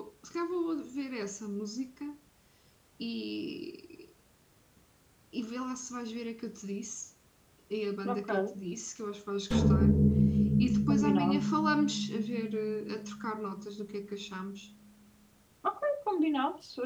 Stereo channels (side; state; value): both; identical; correlation 1.00